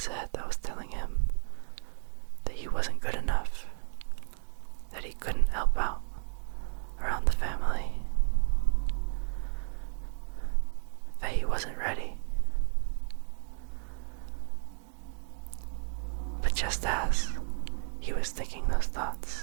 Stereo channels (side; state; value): left; silent; digital silence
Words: head that was telling him that he wasn't good enough, that he couldn't help out around the family, that he wasn't ready. But just as he was thinking those